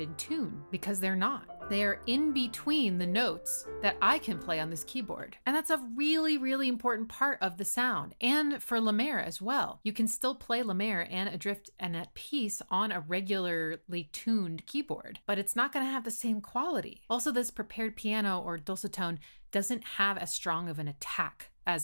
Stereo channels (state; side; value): inverted; both; correlation -1.00